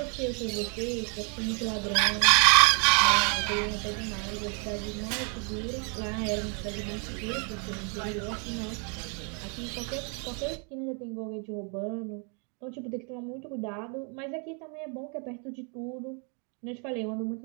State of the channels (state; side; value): quieter; left; 38.3 dB